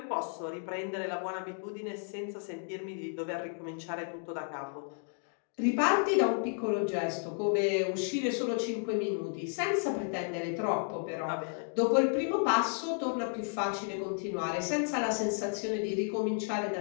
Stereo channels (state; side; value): silent; right; 56 dB below the other